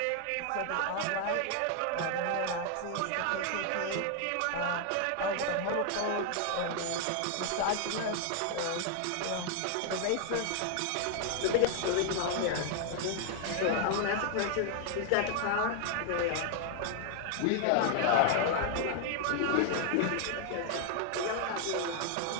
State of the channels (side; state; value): both; different; correlation 0.00